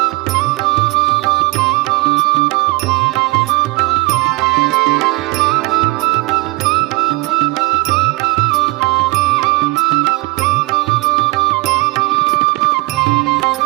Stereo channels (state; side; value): quieter; left; 23.9 dB